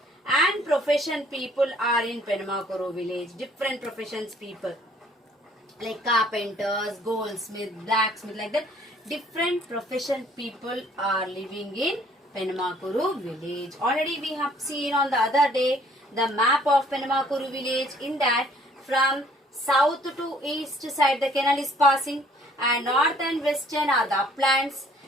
and profession people are in Penamakuru village. Different professions people like carpenters, goldsmith, blacksmith, like that. Different profession people are living in Penamakuru village. Already we have seen on the other day the map of Penamakuru village. In that, from south to east side the canal is passing, and north and western are the uplands,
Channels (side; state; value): both; normal; correlation 0.59